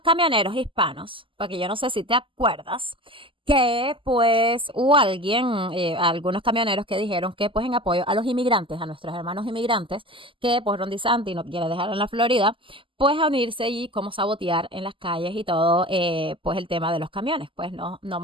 camioneros hispanos, porque yo no sé si te acuerdas, que pues hubo algunos camioneros que dijeron que pues en apoyo a los inmigrantes, a nuestros hermanos inmigrantes, que pues Ron DeSantis no quiere dejar en la Florida, pues a unirse y como sabotear en las calles y todo, pues el tema de los camiones, pues no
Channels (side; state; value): left; late; 0.25 ms